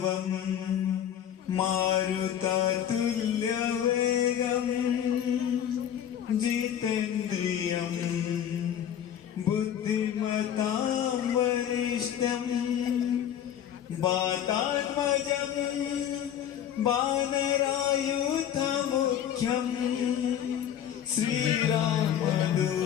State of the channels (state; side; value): quieter; right; 9.9 dB